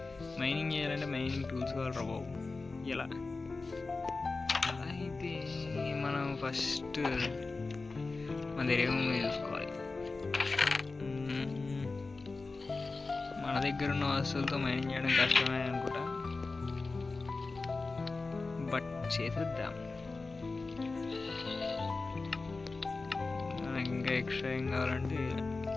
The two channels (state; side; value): quieter; right; 3.8 dB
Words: మైనింగ్ చేయాలంటే మైనింగ్ టూల్స్ కావాలి రా బాబు. ఎలా అయితే మనం ఫస్ట్ మన దగ్గర ఏమేమి చూసుకోవాలి. మన దగ్గర ఉన్న వస్తువులతో మైనింగ్ చేయడం కష్టమే అనుకుంటా, బట్ చేసేద్దాం. ఇంకా ఎక్స్ట్రా ఏం కావాలంటే